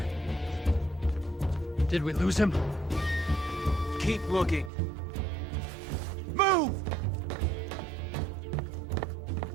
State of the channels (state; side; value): drops out; left; at 4.7 s